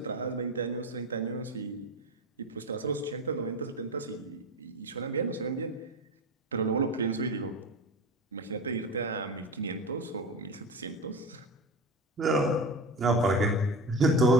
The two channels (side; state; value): both; normal; correlation 0.26